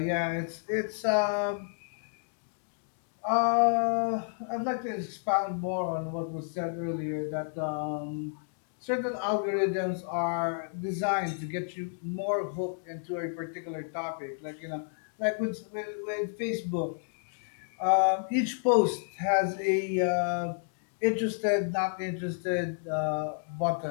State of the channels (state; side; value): silent; right; digital silence